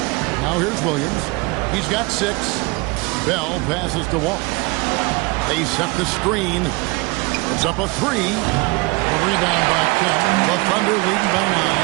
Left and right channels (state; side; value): quieter; left; 25.4 dB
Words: Now here's Williams. He's got 6. Bell passes to Walt. They set the screen. It's up a 3. The rebound by Kemp. The Thunder leading by 9.